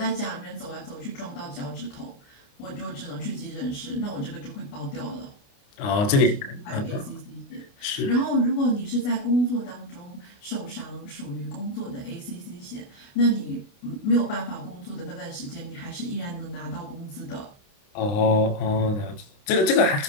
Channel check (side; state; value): right; late; 29 ms